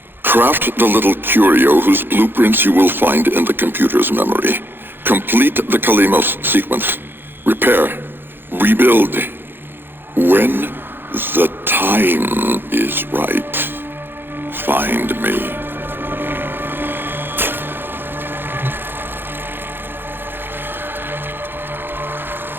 Craft the little curio whose blueprints you will find in the computer's memory. Complete the Kalimos sequence. Repair. Rebuild. When the time is right, find me.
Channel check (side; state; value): left; late; 0.10 ms